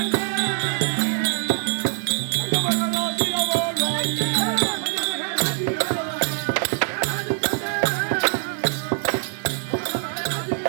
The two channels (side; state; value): left; silent; digital silence